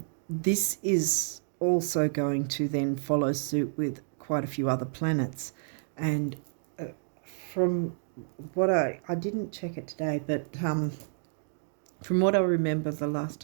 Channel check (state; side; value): silent; left; digital silence